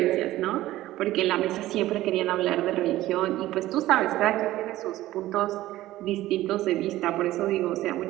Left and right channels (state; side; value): quieter; left; 15.6 dB